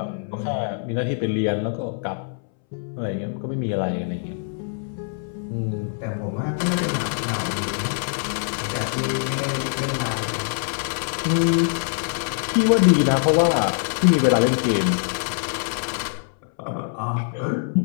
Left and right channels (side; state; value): right; silent; 63 dB below the other